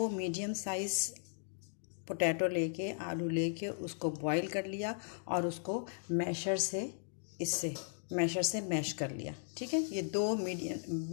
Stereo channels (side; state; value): right; silent; digital silence